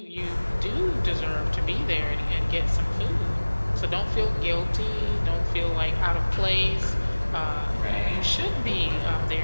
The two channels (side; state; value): both; inverted; correlation -1.00